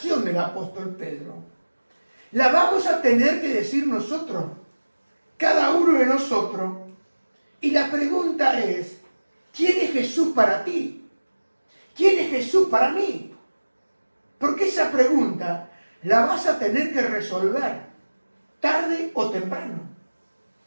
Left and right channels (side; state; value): both; inverted; correlation -1.00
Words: del apóstol Pedro la vamos a tener que decir nosotros, cada uno de nosotros. Y la pregunta es, ¿quién es Jesús para ti? ¿Quién es Jesús para mí? Porque esa pregunta la vas a tener que resolver tarde o temprano.